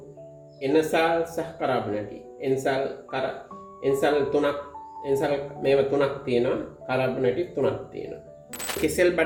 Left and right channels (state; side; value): identical; both; correlation 1.00